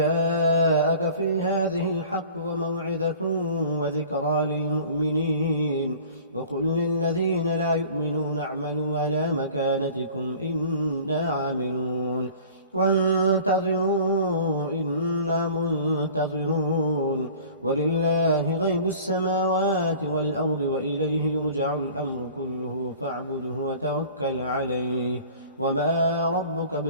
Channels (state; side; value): inverted; both; correlation -0.45